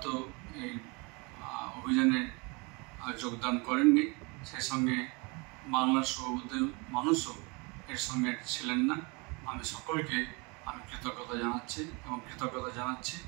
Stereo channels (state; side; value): quieter; left; 29.1 dB